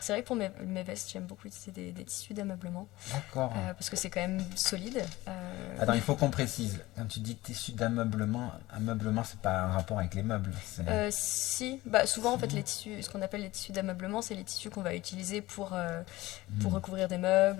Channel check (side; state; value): right; quieter; 18.6 dB